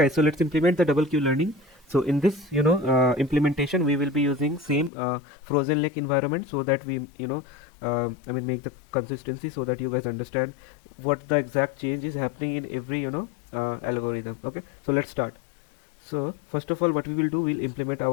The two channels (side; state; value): right; drops out; at 4.9 s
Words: so let's implement the double queue learning. So in this implementation, we will be using same frozen lake environment, so that we make the consistency, so that you guys understand what the exact change is happening in every algorithm. Okay, so let's start. So first of all, what we will do, we'll implement